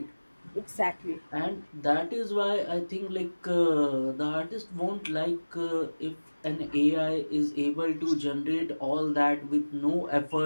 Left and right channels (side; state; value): both; inverted; correlation -1.00